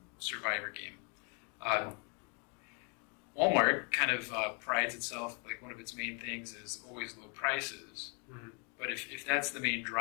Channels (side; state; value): right; quieter; 36.6 dB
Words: survivor game, Walmart kind of prides itself, like one of its main things is always low prices. Mm-hmm. But if that's the main